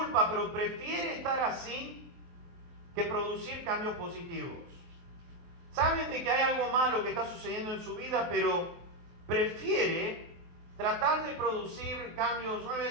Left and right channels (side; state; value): left; late; 23 ms